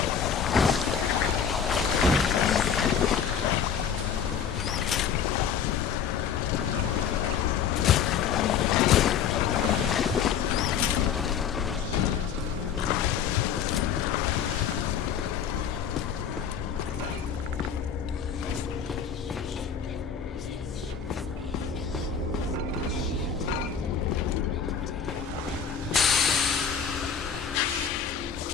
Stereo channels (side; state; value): right; quieter; 7.4 dB